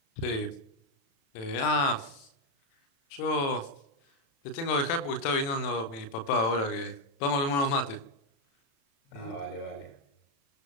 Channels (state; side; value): late; right; 35 ms